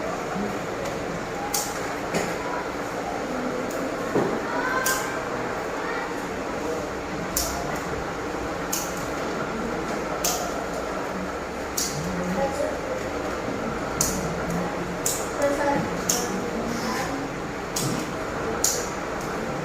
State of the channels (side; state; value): both; identical; correlation 1.00